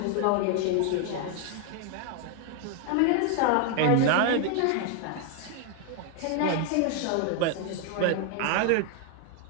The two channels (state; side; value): different; both; correlation 0.00